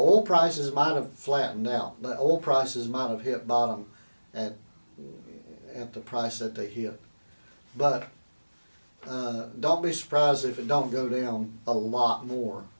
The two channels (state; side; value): inverted; both; correlation -1.00